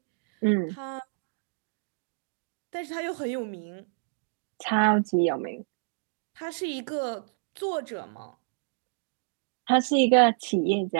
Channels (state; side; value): silent; left; digital silence